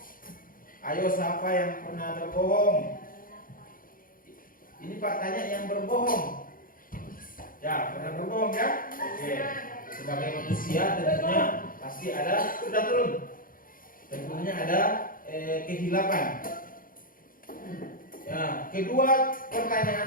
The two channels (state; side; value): late; right; 0.41 ms